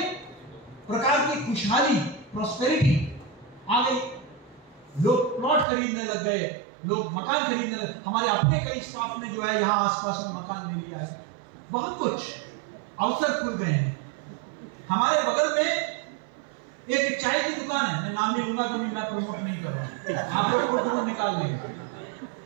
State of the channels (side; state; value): left; drops out; at 5.7 s